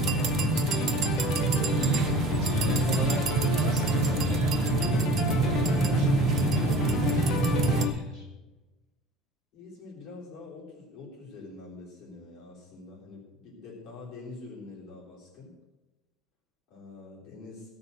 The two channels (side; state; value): both; normal; correlation 0.42